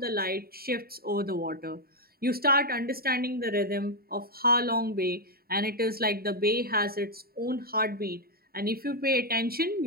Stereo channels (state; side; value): late; left; 0.44 ms